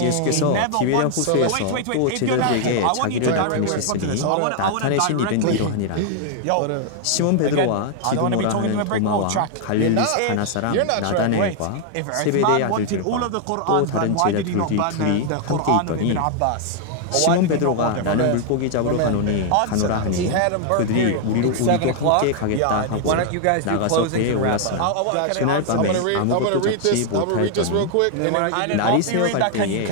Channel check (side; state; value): both; different; correlation 0.00